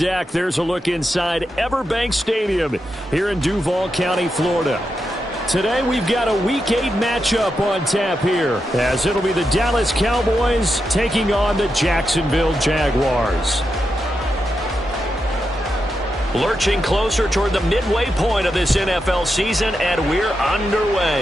there's a look inside Everbank Stadium here in Duval County, Florida. Today we've got a Week 8 matchup on tap here, as it'll be the Dallas Cowboys taking on the Jacksonville Jaguars. Lurching closer toward the midway point of this NFL season, and we're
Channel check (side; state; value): both; normal; correlation 0.87